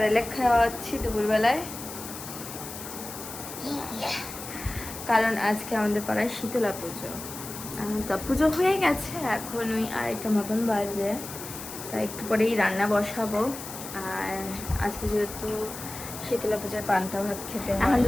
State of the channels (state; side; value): noise; left; hiss, 11 dB below the sound